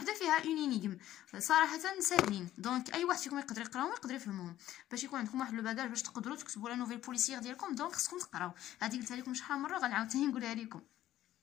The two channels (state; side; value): quieter; right; 13.3 dB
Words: فيها اون انيغم صراحه ساهلين. دونك اي واحد فيكم يقدر يقراهم يقدر يفهمهم باش يكون عندكم واحد لو باغاج باش تقدروا تكتبوا لا نوفيل بوليسيير ديالكم. دونك خصكم تقراو، هذه قلتها لكم شحال مره غنعاود ثاني نقولها لكم.